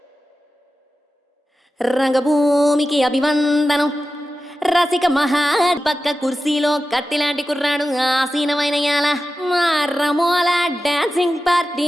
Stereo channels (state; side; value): normal; both; correlation 0.93